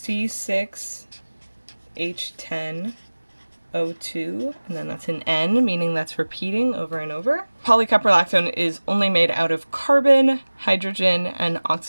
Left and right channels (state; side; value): inverted; both; correlation -1.00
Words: and then that's an N, meaning that's repeating over and over. Polycaprolactone is only made out of carbon, hydrogen, and